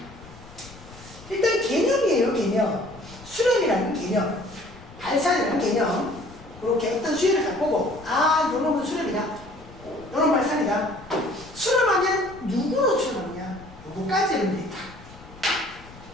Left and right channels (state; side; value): noise; left; rumble, 19 dB below the sound